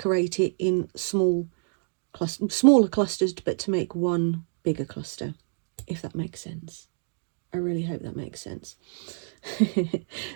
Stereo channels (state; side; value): silent; left; digital silence